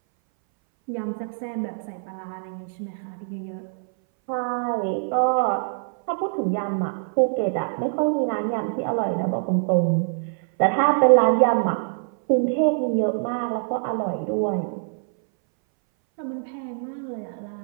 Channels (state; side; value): silent; left; 61 dB below the other